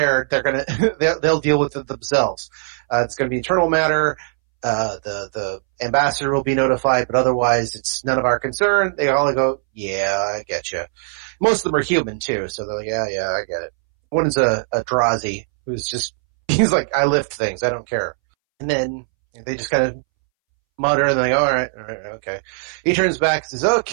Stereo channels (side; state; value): left; silent; 64 dB below the other